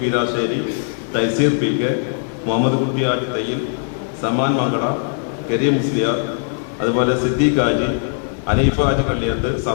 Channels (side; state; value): right; silent; digital silence